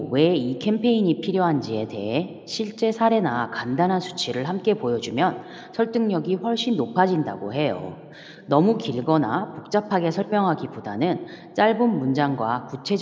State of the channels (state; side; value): identical; both; correlation 1.00